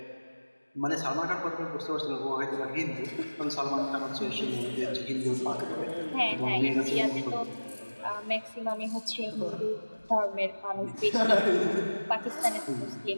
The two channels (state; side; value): inverted; both; correlation -1.00